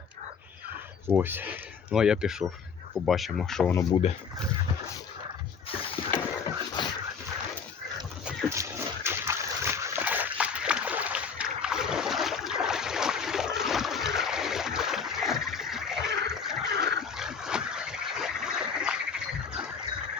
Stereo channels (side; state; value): right; quieter; 6.1 dB